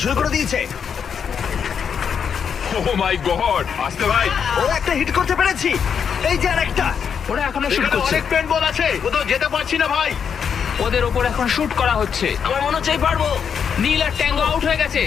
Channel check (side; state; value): right; quieter; 7.2 dB